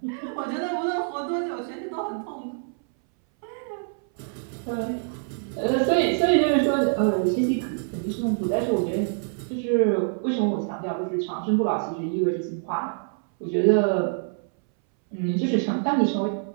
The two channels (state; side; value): silent; left; 61 dB below the other